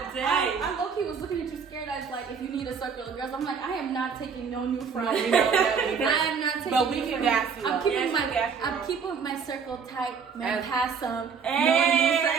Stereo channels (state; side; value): quieter; left; 6.2 dB